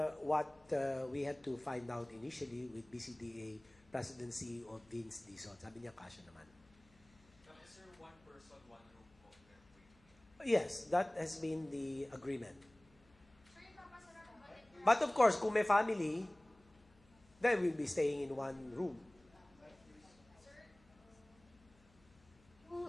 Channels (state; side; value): noise; left; hum, 29 dB below the sound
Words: what we had to find out initially with BCDA presidency of Vince Dizon. Sabi niya, kasya naman. Sir, one person, one room po. Yes, that has been the agreement. But of course, kung may family, they will be staying in one room.